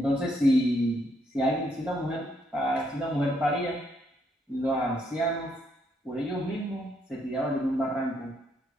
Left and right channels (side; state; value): both; normal; correlation 0.74